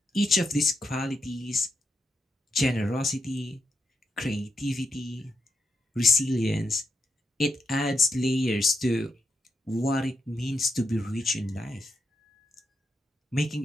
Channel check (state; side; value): normal; both; correlation 0.83